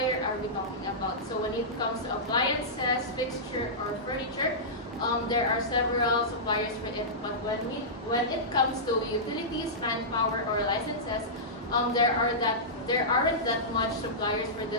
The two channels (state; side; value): normal; both; correlation -0.15